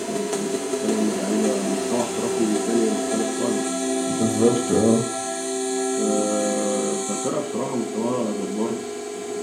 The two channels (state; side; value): identical; both; correlation 1.00